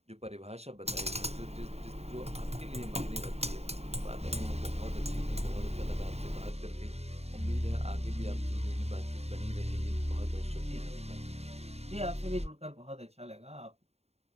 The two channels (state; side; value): late; left; 0.30 ms